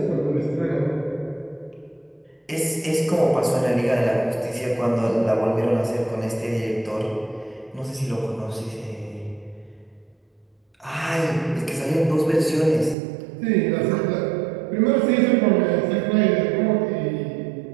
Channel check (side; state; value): left; drops out; at 13.0 s